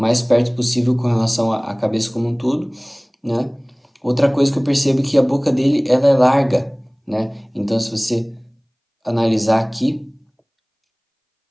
mais perto possível com relação à cabeça como um todo, né? Outra coisa que eu percebo é que a boca dele ela é larga, né? Então se você analisar aqui,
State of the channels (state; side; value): identical; both; correlation 1.00